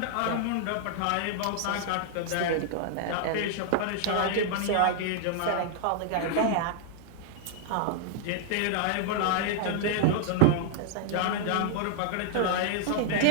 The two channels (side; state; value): both; different; correlation -0.01